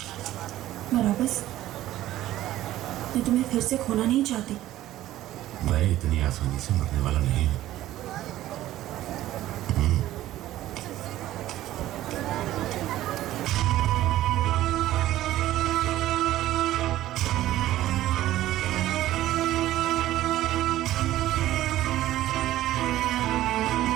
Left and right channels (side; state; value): left; quieter; 14.4 dB